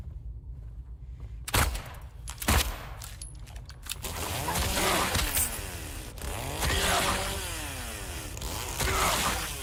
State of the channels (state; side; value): identical; both; correlation 1.00